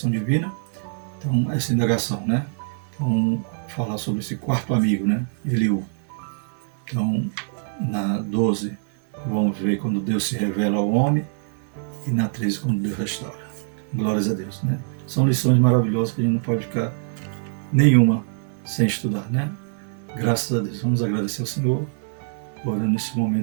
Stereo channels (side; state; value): left; silent; 63 dB below the other